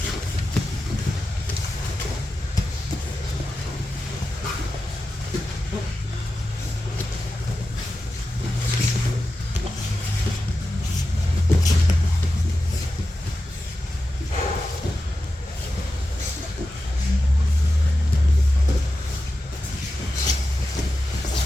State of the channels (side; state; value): both; normal; correlation 0.92